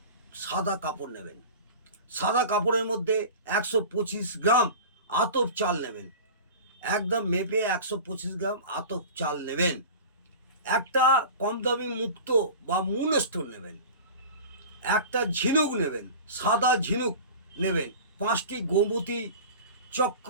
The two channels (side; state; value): both; inverted; correlation -0.35